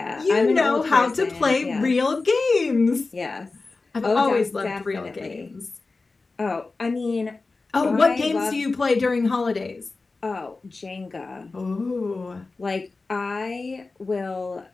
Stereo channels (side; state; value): right; quieter; 3.8 dB